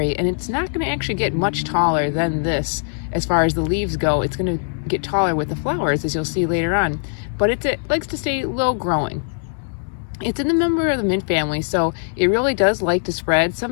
and it's not going to actually get much taller than this as far as the leaves go. It's going to get taller with the flowers, as you'll see later on, but it likes to stay low growing. It's in the member of the mint family, so it really does like to spread.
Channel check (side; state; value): right; silent; digital silence